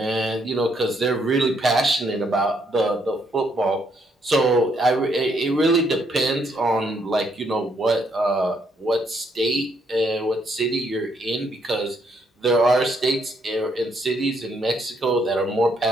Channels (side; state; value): both; normal; correlation 0.72